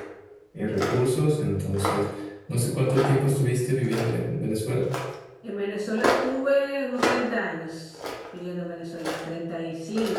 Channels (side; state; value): both; identical; correlation 1.00